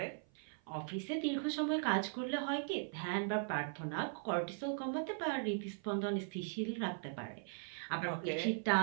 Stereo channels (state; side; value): silent; left; 52 dB below the other